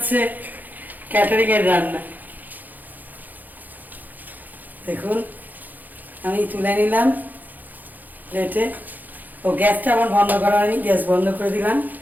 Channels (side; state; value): left; late; 0.084 ms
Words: ক্যাটারিং এর রান্না। দেখুন আমি তুলে নিলাম প্লেটে। ও গ্যাসটা আমার বন্ধ করা হয়নি, গ্যাস বন্ধ করে দিলাম।